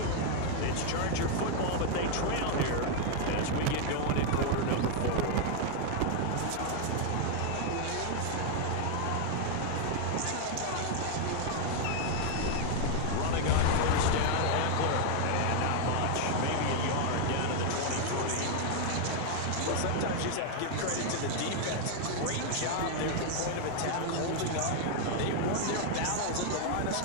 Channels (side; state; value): both; different; correlation 0.00